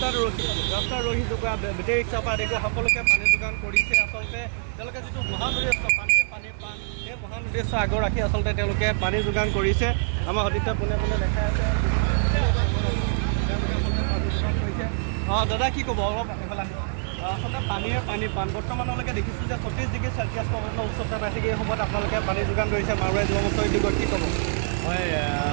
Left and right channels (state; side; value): silent; left; digital silence